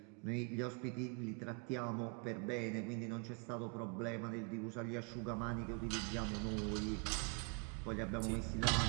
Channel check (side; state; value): left; quieter; 32.9 dB